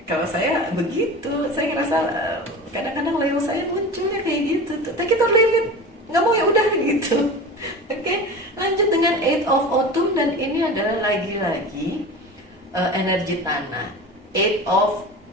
kalau saya begitu, saya ngerasa kadang-kadang Leo saya munculnya kayak gitu tuh, take it or leave it, nggak mau ya udah gitu. Oke, lanjut dengan Eight of Autumn, dan ini adalah lagi-lagi energi tanah. Eight of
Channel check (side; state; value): both; normal; correlation 0.32